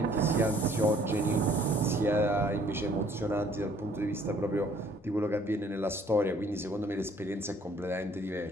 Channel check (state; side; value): normal; both; correlation 0.59